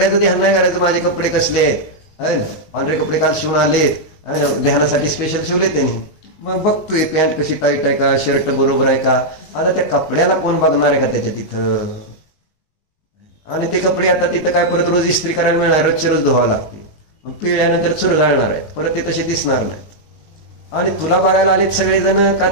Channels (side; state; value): right; late; 19 ms